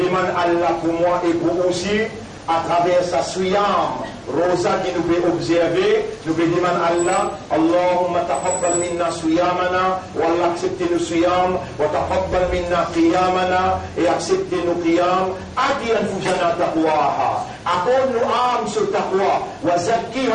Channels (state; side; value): identical; both; correlation 1.00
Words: Allah pour moi et pour aussi à travers sa suyam, rosa qui nous peut observer, nous peut demander Allah, Allahumma taqabbal minna suyamana, wa Allah accepte nos suyam, wa taqabbal minna qiyamana, et accepte nos qiyam, adi anfusana taqwaha, accorde nos âmes ce taqwa, wa